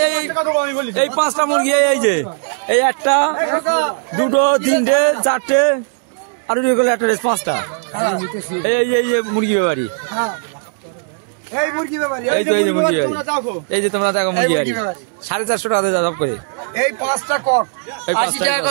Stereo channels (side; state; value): left; silent; digital silence